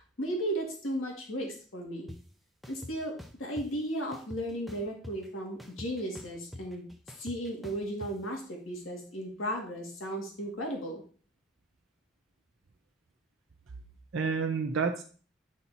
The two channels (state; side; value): normal; both; correlation 0.32